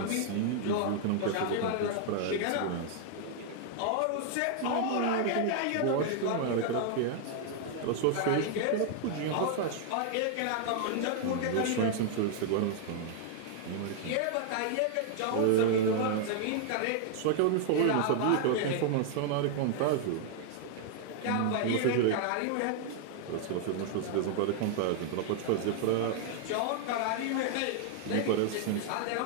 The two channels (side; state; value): both; different; correlation 0.00